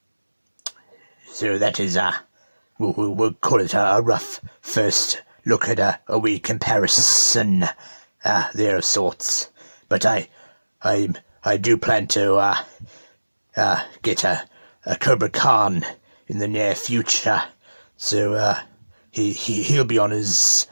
So that is we'll call it a rough first look at a wee comparison there of sorts. But I do plan to get a Cobra Khan in the near future. So he'll be on his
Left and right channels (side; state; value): both; inverted; correlation -1.00